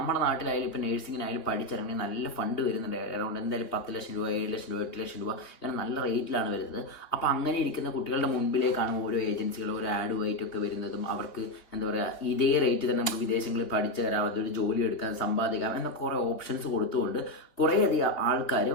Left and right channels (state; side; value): late; right; 3.3 ms